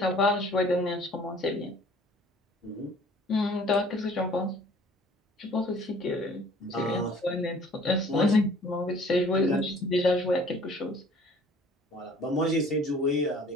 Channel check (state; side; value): normal; both; correlation 0.53